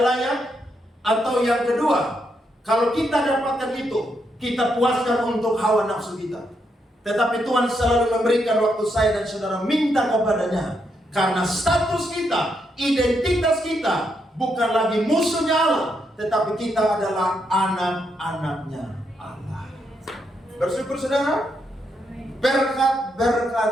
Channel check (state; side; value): normal; both; correlation 0.79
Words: layak, atau yang kedua, kalau kita dapatkan itu, kita puaskan untuk hawa nafsu kita. Tetapi Tuhan selalu memberikan waktu saya dan saudara minta kepadanya. Karena status kita, identitas kita bukan lagi musuhnya Allah, tetapi kita adalah anak-anaknya Allah. Bersyukur saudara.